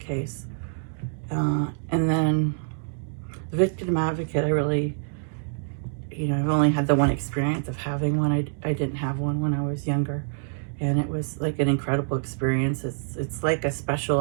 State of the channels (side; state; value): left; silent; digital silence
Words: And then the victim advocate, I really, I've only had the one experience of having one. I didn't have one when I was younger. And it was like an incredible experience. It's like a